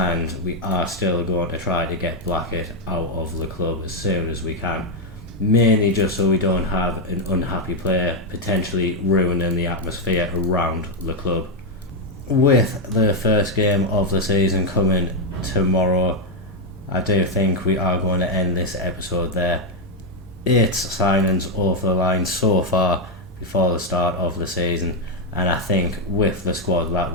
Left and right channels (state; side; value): normal; both; correlation 0.04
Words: we are still going to try to get Blackett out of the club as soon as we can, mainly just so we don't have an unhappy player potentially ruining the atmosphere around the club. With the first game of the season coming tomorrow, I do think we are going to end this episode there. 8 signings over the line so far before the start of the season, and I think with the squad that